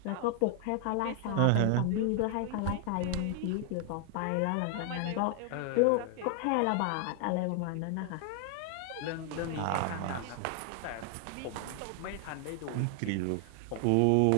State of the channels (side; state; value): both; different; correlation 0.00